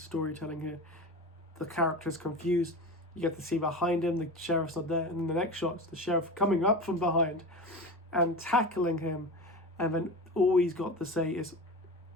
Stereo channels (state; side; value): normal; both; correlation 0.28